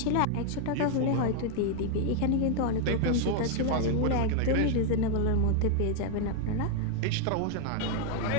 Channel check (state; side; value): different; both; correlation 0.00